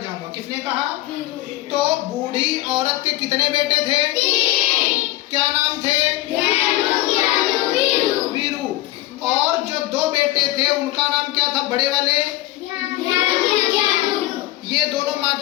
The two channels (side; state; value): right; quieter; 17.2 dB